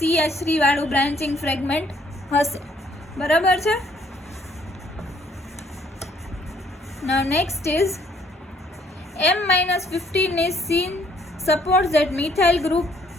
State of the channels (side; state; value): both; normal; correlation 0.65